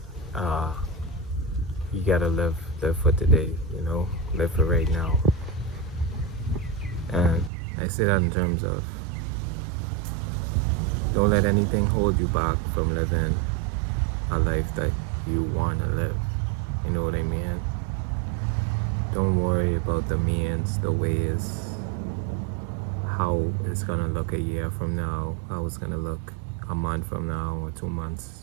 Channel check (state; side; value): drops out; left; at 7.5 s